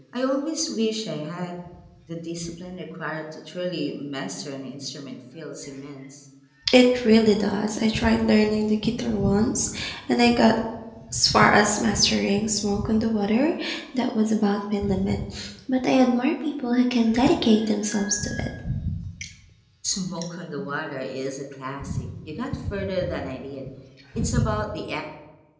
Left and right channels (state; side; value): identical; both; correlation 1.00